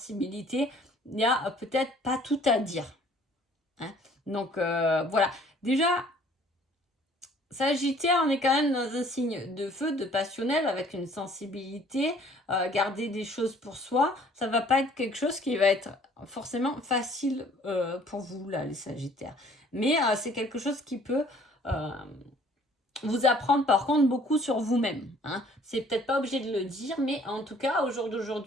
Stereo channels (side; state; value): both; normal; correlation 0.56